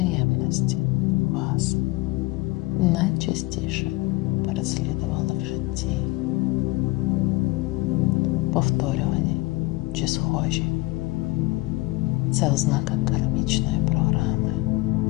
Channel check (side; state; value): right; quieter; 21.5 dB